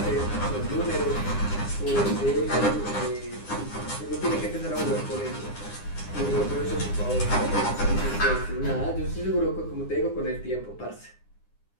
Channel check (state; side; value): late; right; 9.8 ms